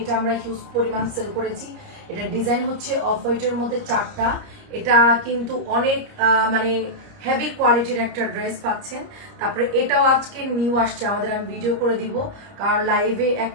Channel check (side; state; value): left; late; 30 ms